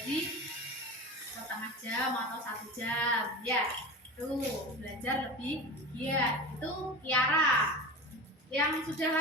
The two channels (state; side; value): normal; both; correlation 0.29